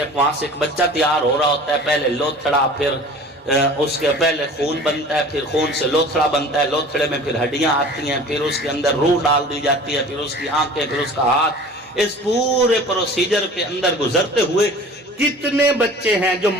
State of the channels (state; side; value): normal; both; correlation 0.43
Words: وہاں سے ایک بچہ تیار ہو رہا ہوتا ہے، پہلے لوتھڑا، پھر اس کے پہلے خون بنتا ہے، پھر خون سے لوتھڑا بنتا ہے، لوتھڑے میں پھر ہڈیاں آتی ہیں، پھر اس کے اندر روح ڈال دی جاتی ہے، پھر اس کی آنکھیں، پھر اس کا ہاتھ۔ اس پورے پروسیجر کے اندر گزرتے ہوئے کتنے بچے ہیں جو